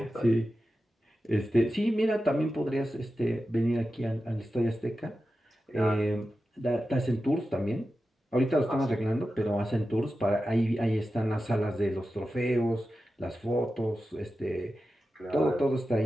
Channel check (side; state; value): both; normal; correlation 0.92